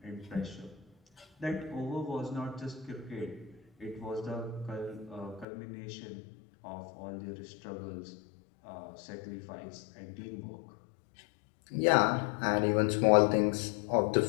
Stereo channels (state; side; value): drops out; right; at 5.5 s